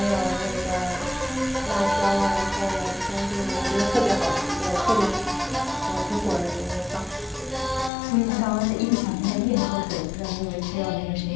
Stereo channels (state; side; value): drops out; right; at 7.9 s